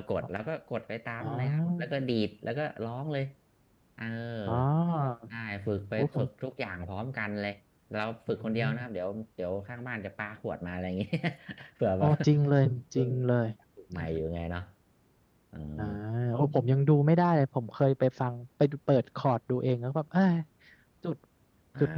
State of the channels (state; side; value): identical; both; correlation 1.00